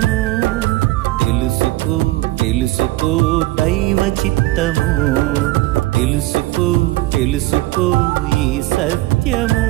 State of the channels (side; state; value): left; quieter; 18.5 dB